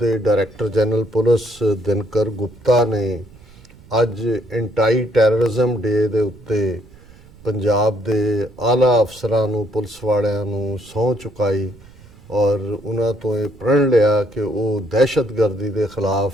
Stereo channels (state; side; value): noise; right; rumble, 24 dB below the sound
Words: director general police Dinkar Gupta ਨੇ ਅੱਜ ਐਂਟੀ ਟੈਰਰਿਜ਼ਮ ਡੇ ਦੇ ਉੱਤੇ ਪੰਜਾਬ ਦੇ ਆਲਾ ਅਫਸਰਾਂ ਨੂੰ, ਪੁਲਿਸ ਵਾਲਿਆਂ ਨੂੰ ਸਹੁੰ ਚੁਕਾਈ ਔਰ ਉਹਨਾਂ ਤੋਂ ਇਹ ਪ੍ਰਣ ਲਿਆ ਕਿ ਉਹ ਦਹਿਸ਼ਤਗਰਦੀ ਦੇ ਖਿਲਾਫ